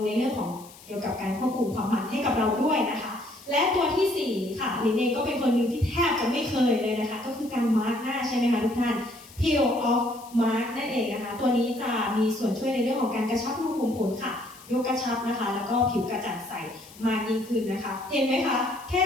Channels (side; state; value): left; noise; hiss, 21 dB below the sound